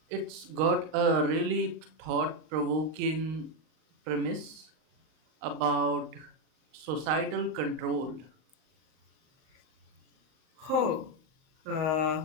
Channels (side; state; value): left; late; 38 ms